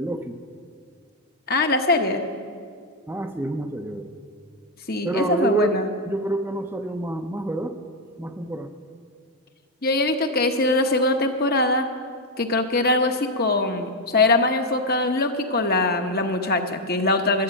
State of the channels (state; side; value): normal; both; correlation 0.03